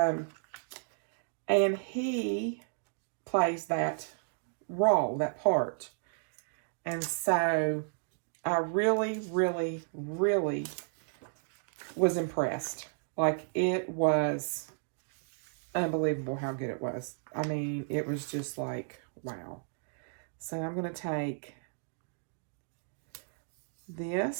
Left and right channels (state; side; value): silent; left; digital silence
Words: he plays that role, that part. And so I really, really, really was impressed. Like, it was unbelievable how good it was. I mean, it was just like, wow. So I'm going to take